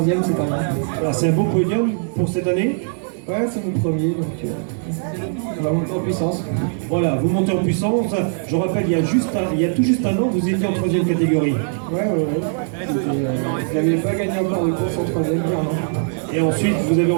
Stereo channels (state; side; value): silent; left; 63 dB below the other